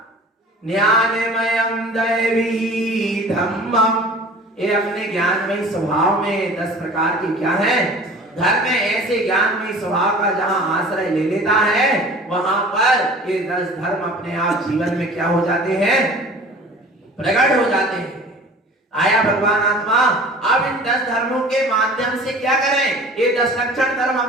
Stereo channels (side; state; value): both; normal; correlation 0.44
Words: ज्ञानमयम दैवी धम्मम। ये अपने ज्ञानमय स्वभाव में 10 प्रकार के क्या है? धर्म में। ऐसे ज्ञानमय स्वभाव का जहां आश्रय ले लेता है वहां पर ये 10 धर्म अपने आप जीवन में क्या हो जाते हैं? प्रकट हो जाते हैं। आया भगवान आत्मा, अब इन 10 धर्मों के माध्यम से क्या करें? ये 10 लक्षण धर्म